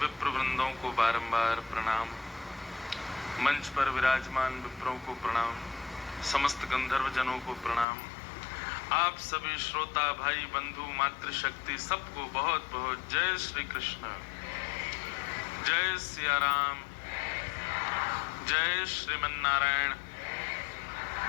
वृंदों को बारंबार प्रणाम, मंच पर विराजमान विप्रों को प्रणाम, समस्त गंधर्व जनों को प्रणाम, आप सभी श्रोता भाई बंधु मातृशक्ति सबको बहुत बहुत जय श्री कृष्ण, जय सिया राम, जय श्रीमन नारायण,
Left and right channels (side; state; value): right; drops out; at 7.9 s